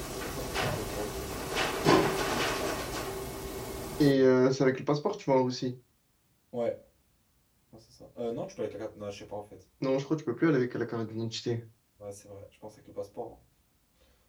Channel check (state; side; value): identical; both; correlation 1.00